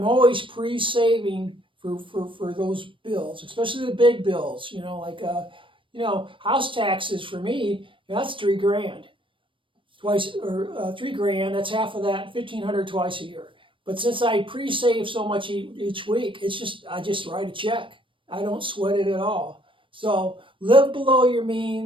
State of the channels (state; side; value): late; left; 0.25 ms